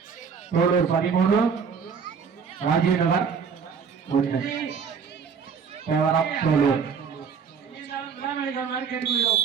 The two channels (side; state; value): left; quieter; 6.3 dB